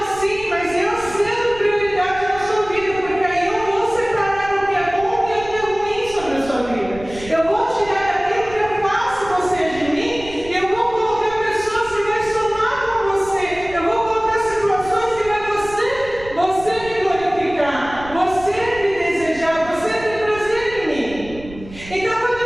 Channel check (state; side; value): noise; right; rumble, 16 dB below the sound